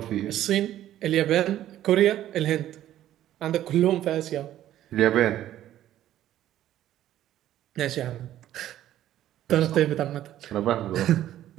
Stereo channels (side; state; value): left; quieter; 12.6 dB